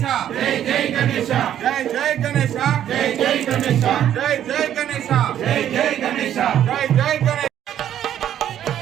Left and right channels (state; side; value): quieter; left; 10.7 dB